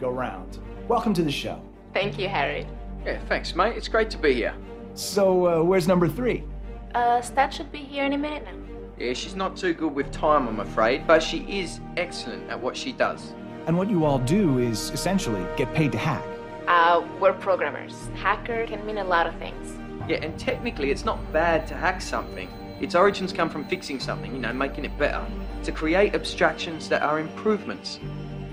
go round. Welcome to the show. Thank you, Harry. Yeah, thanks, mate. It's great to be here. So, where's number 3? Stat should be here any minute now. Yeah, she's not too good with time, I'm afraid, but she is excellent at what she does. And what you all do is, essentially, get paid to hack. We're programmers. Hacker can mean a lot of things. Yeah, and technically it's not bad to hack something. Its origins come from fixing something, making it better. To create abstractions that are improvements.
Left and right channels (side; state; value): both; identical; correlation 1.00